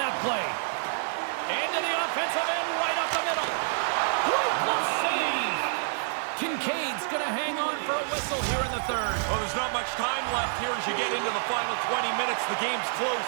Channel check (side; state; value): left; silent; 56 dB below the other